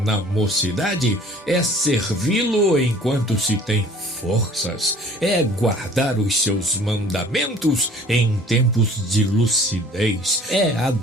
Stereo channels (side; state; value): both; normal; correlation 0.51